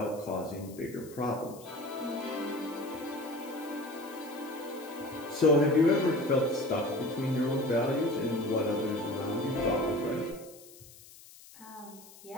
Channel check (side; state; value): left; noise; hiss, 20 dB below the sound